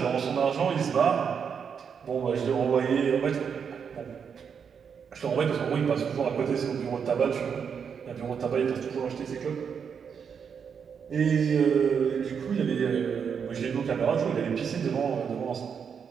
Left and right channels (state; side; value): quieter; left; 6.9 dB